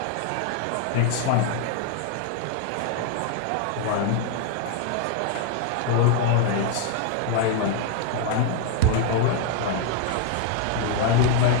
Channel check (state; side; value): different; both; correlation 0.00